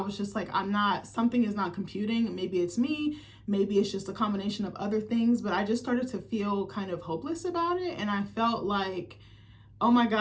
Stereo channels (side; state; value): both; identical; correlation 1.00